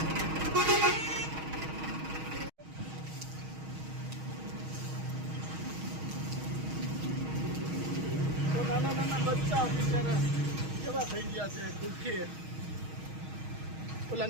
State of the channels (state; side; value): late; left; 6.4 ms